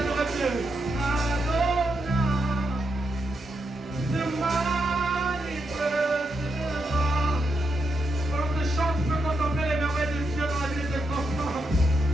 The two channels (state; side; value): normal; both; correlation 0.83